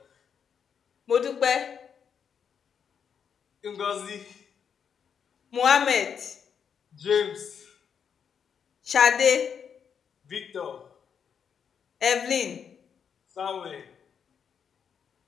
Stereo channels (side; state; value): right; quieter; 7.3 dB